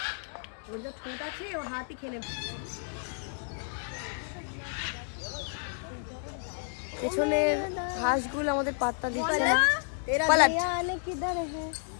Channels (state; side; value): silent; right; digital silence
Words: ওর যা ঠোঁট আছে ও হাতই খেয়ে নেবে। পেছনের হাঁসগুলো আমাদের পাত্তা দিচ্ছে না। পালাট